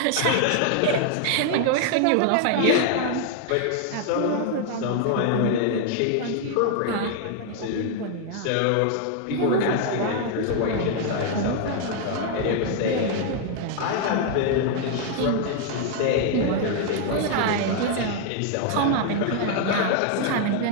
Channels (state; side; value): different; both; correlation 0.00